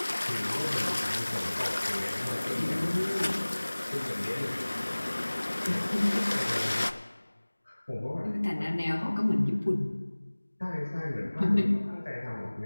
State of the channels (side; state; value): both; inverted; correlation -1.00